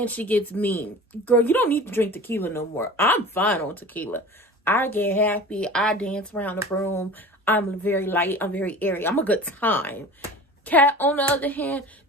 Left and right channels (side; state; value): both; normal; correlation 0.38